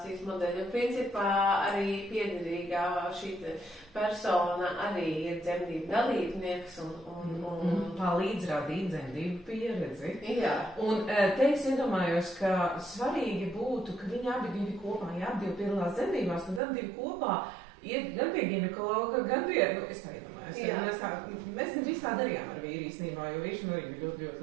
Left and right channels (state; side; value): drops out; left; at 16.6 s